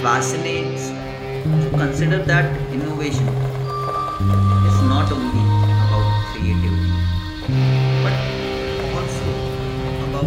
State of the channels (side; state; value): both; identical; correlation 1.00